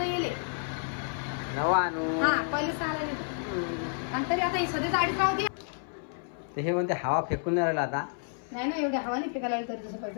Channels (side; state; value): right; silent; 58 dB below the other